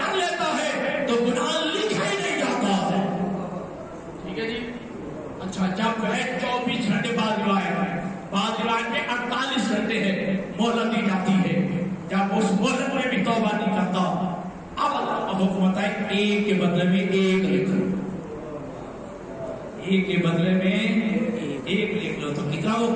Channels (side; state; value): both; identical; correlation 1.00